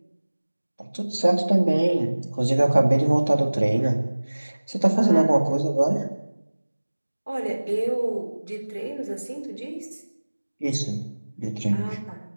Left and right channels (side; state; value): both; inverted; correlation -1.00